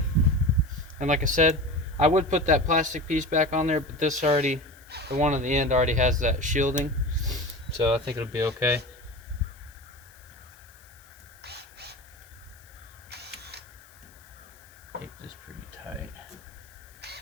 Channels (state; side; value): noise; left; hiss, 26 dB below the sound